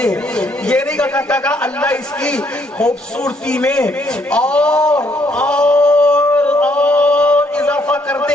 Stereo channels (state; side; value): normal; both; correlation 0.69